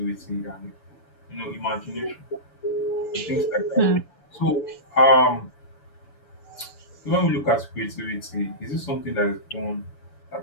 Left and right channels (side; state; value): right; late; 7.0 ms